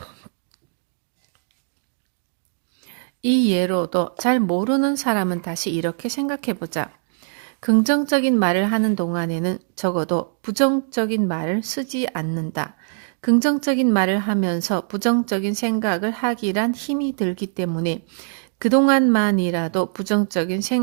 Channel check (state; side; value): silent; left; digital silence